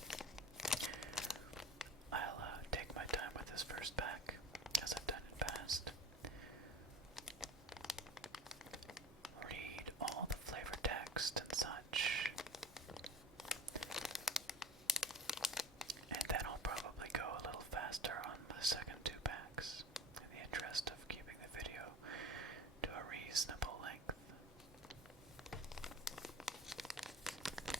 I'll take my time with this first pack, as I've done in past. Read all the flavor text and such. And then I'll probably go a little faster on the second two packs, in the interest of keeping the video to a reasonable length.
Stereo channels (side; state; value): both; normal; correlation 0.36